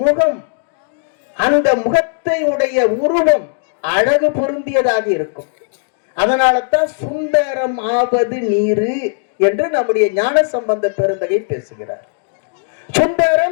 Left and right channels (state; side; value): silent; right; digital silence